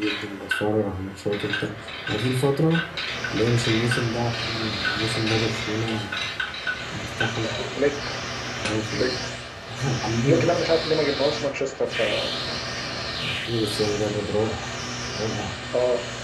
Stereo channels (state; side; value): identical; both; correlation 1.00